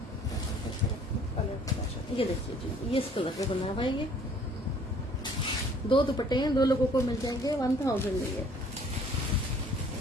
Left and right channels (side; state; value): both; normal; correlation 0.56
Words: ये देखिए जी ये इस कलर पे बना हुआ है ये। 2 दुपट्टे हैं, 2 लोगों को मिल जाएंगे 1000 में ये।